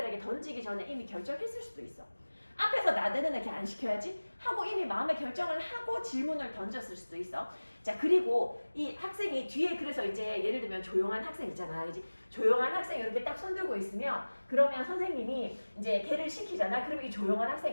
던지기 전에 이미 결정했을 수도 있어. 앞에서 나대는 애 걔 안 시켜야지 하고 이미 마음의 결정을 하고 질문을 던졌을 수도 있어. 자 그리고 이 학생이 뒤에 그래서 이제 예를 들면 조용한 학생 있잖아. 그지? 조용한 학생이 이렇게 딱 손들고 있으면 그러면 선생님이 이제 걔를 시키잖아. 그러면 이 조용한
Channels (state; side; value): inverted; both; correlation -1.00